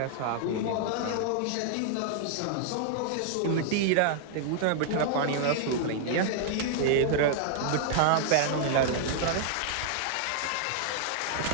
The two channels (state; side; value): different; both; correlation -0.01